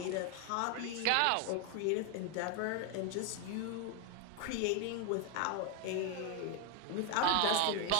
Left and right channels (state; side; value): different; both; correlation 0.00